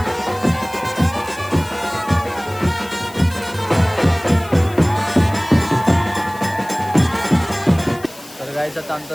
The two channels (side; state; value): left; noise; hiss, 20 dB below the sound